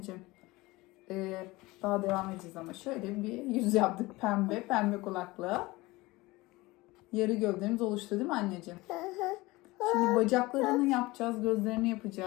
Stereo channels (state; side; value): quieter; right; 21.0 dB